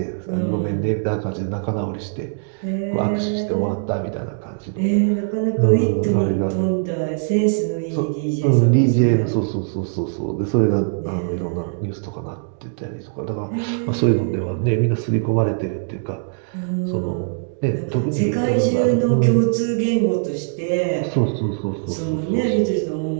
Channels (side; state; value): left; silent; digital silence